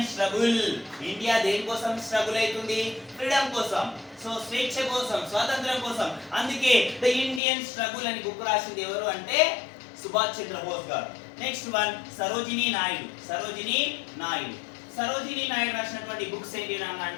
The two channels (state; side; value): drops out; right; at 7.4 s